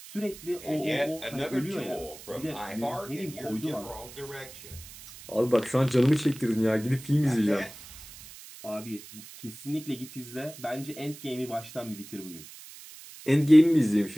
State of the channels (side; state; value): right; noise; hiss, 17 dB below the sound